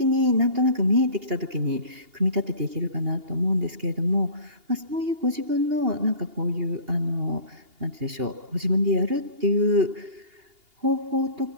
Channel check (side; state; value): left; late; 2.8 ms